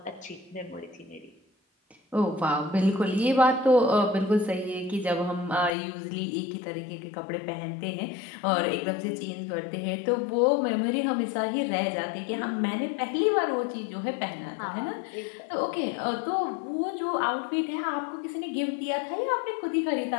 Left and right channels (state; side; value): drops out; right; at 5.8 s